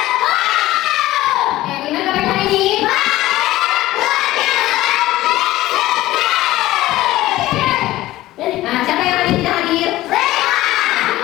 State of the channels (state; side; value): quieter; right; 16.3 dB